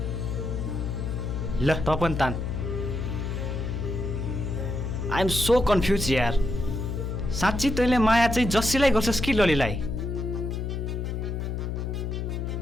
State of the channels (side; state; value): left; noise; hum, 3 dB below the sound